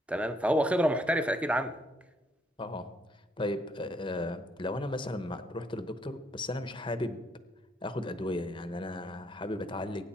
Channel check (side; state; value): both; normal; correlation 0.71